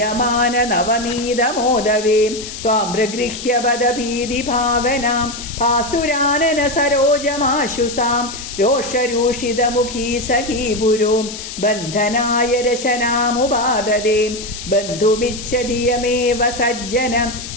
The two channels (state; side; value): noise; left; hiss, 10 dB below the sound